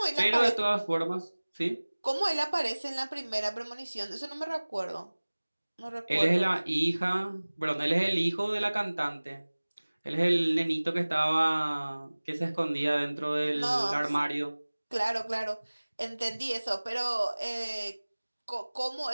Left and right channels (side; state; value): both; inverted; correlation -1.00